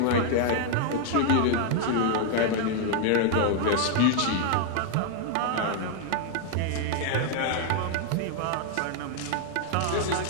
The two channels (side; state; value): both; different; correlation 0.00